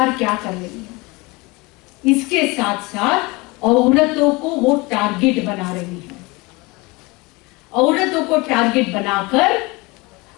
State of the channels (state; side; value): quieter; right; 24.6 dB